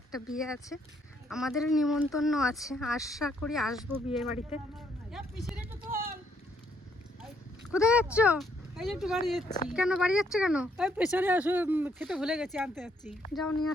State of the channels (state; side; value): normal; both; correlation 0.71